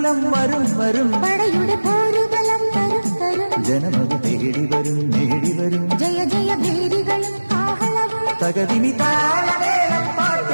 വരും വരും പടയുടെ പോരുബലം തരും തരും ജനമത് തേടി വരും നേടി വരും ജയ ജയ ഭേരികളും കാഹളവും തകതിനി താളമേളം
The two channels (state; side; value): inverted; both; correlation -1.00